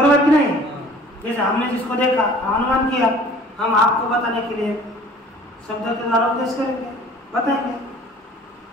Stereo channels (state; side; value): normal; both; correlation 0.49